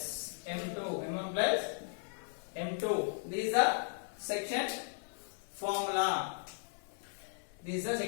M2. This is the section formula. This is the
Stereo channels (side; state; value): right; silent; digital silence